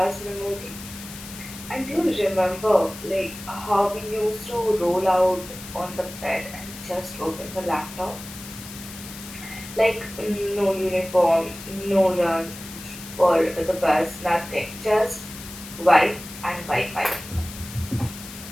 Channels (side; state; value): left; noise; hiss, 14 dB below the sound